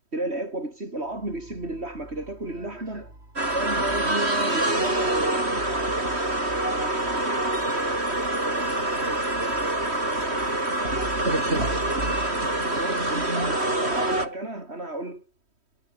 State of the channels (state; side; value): late; left; 3.1 ms